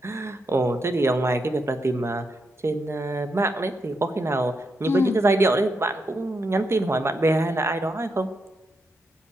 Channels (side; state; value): both; normal; correlation 0.82